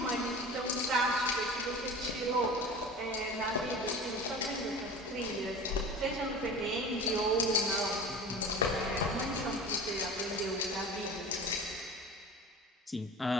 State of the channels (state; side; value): normal; both; correlation 0.35